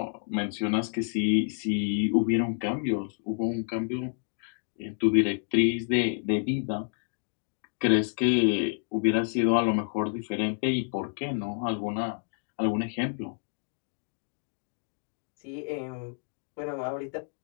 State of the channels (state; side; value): silent; right; digital silence